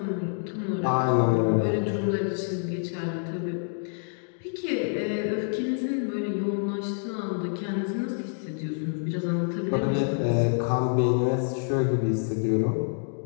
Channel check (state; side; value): silent; right; 60 dB below the other